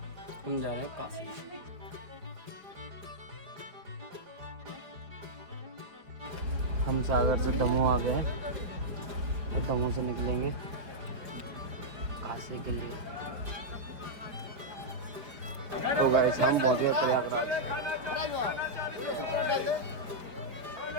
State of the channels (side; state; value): left; late; 4.9 ms